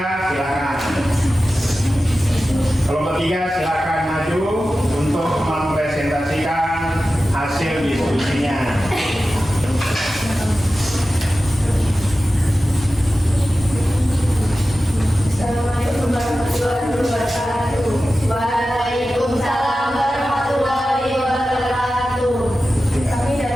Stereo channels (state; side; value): normal; both; correlation 0.94